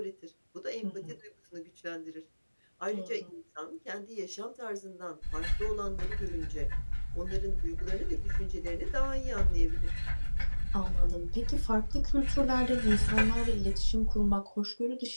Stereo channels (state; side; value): inverted; both; correlation -1.00